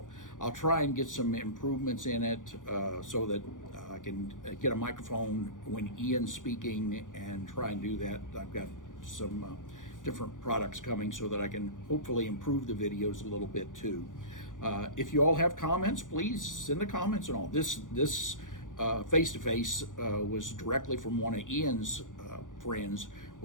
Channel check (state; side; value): late; right; 0.88 ms